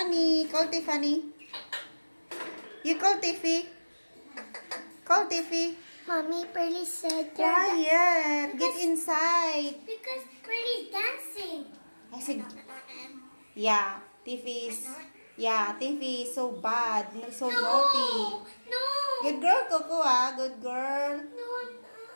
Call Tiffany. You call Tiffy. Call Tiffy. Mommy, Pearly said Quiet. Get inside. Because Pearly's dancing. I said, yeah, Tiffy is, Tiffy is so bad. So naughty. No. Good girl, Coco, ah. Good girl. No, I'm not.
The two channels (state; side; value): inverted; both; correlation -1.00